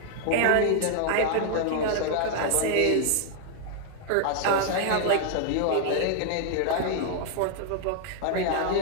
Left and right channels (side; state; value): both; different; correlation 0.00